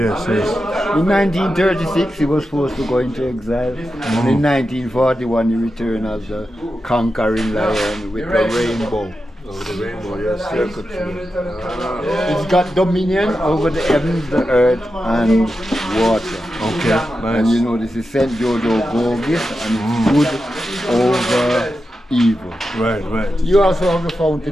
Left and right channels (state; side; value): normal; both; correlation 0.90